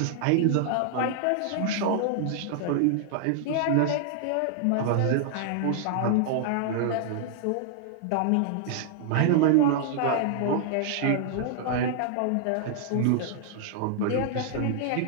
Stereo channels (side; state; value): both; different; correlation -0.01